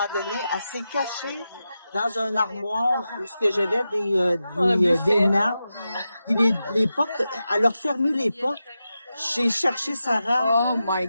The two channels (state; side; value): inverted; both; correlation -0.90